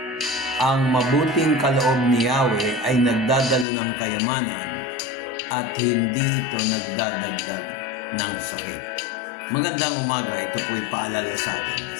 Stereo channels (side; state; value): right; drops out; at 3.7 s